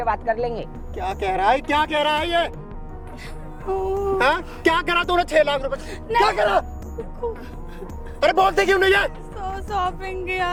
बात कर लेंगे। क्या कह रहा है, क्या कह रहा है ये? हाँ? क्या करा तूने 6 लाख रुपए? क्या करा? अरे बोलते क्यों नहीं है? शॉपिंग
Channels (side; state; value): both; identical; correlation 1.00